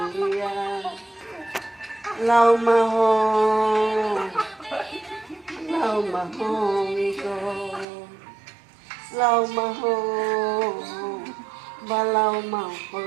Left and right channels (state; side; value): drops out; left; at 7.9 s